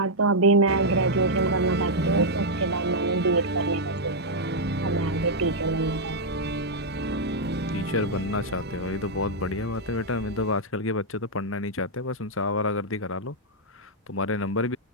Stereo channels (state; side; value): normal; both; correlation -0.03